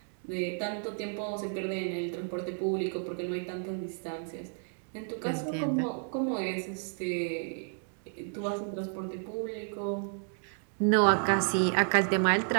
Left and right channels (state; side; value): silent; left; 57 dB below the other